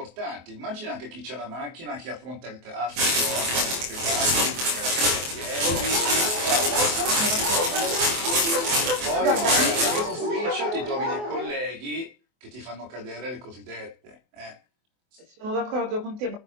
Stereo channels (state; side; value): late; left; 24 ms